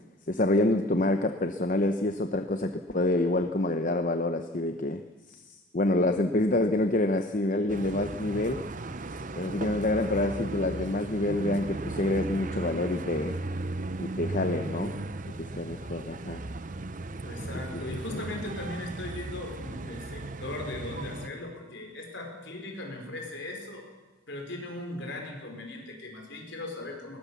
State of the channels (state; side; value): normal; both; correlation 0.47